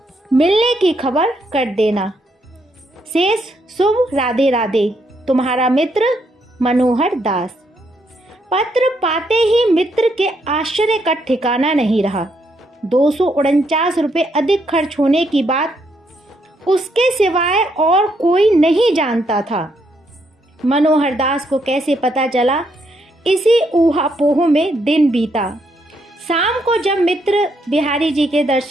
मिलने की खबर कर देना। शेष शुभ, राधे राधे, तुम्हारा मित्र मनोहर दास। पत्र पाते ही मित्र के आश्चर्य का ठिकाना नहीं रहा। 249 रुपये अधिक खर्च होने की बात उसके सिवाय और कोई नहीं जानता था। मनोहर दास को कैसे पता चला, इसी ऊहापोह में दिन बीता। शाम को जब मित्र बिहारी जी के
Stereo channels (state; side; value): normal; both; correlation 0.75